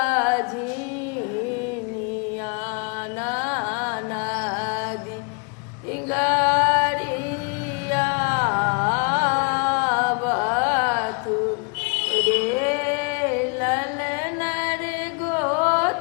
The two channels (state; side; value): quieter; right; 34.6 dB